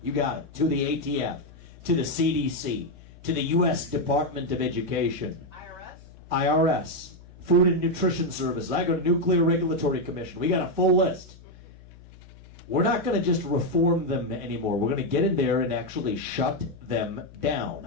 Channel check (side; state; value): left; noise; hum, 21 dB below the sound